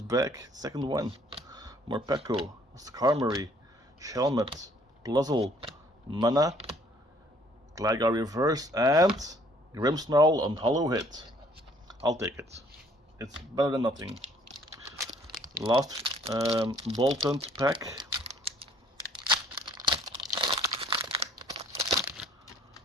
back, second one. Morpeko, Skarmory, Shelmet, Blizzle, Mana, Gligar Reverse, and Grimmsnarl on Hollow Hit. I'll take it. It's better than nothing. Last Bolton pack.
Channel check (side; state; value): both; normal; correlation 0.59